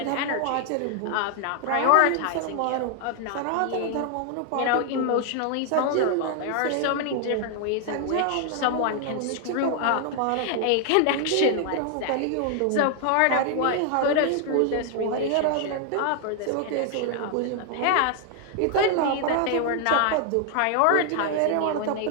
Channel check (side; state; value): both; different; correlation 0.00